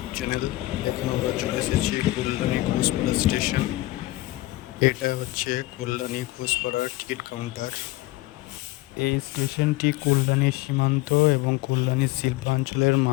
channel. এখন আমরা চলে এসেছি কল্যাণী ঘোষপাড়া স্টেশন। এটা হচ্ছে কল্যাণী ঘোষপাড়ার টিকিট কাউন্টার। এই স্টেশনটি কল্যাণী সীমান্ত এবং কল্যাণী শিল্পাঞ্চলের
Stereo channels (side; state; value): right; quieter; 18.6 dB